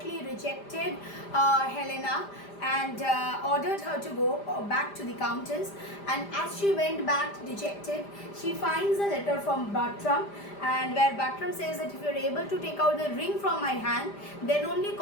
rejected Helena and ordered her to go back to the countess, and as she went back dejected, she finds a letter from Bartram, and where Bartram says that if you're able to take out the ring from my hand, then only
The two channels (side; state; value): right; late; 5.0 ms